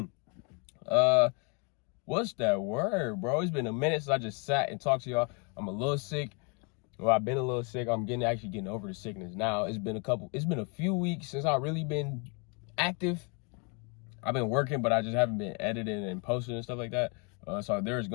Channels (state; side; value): quieter; right; 34.7 dB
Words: What's that word, bro? It's been a minute since I just sat and talked to y'all. I'm a little sick. Well, I've been a little sick. I'm actually getting over the sickness now. It's been a few weeks since I've really been active. I've been working, but I just haven't been editing and posting and stuff like that. So there's